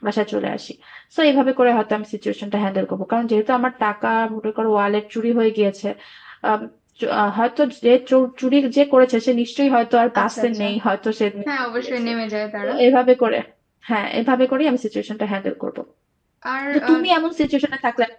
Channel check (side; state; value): both; identical; correlation 1.00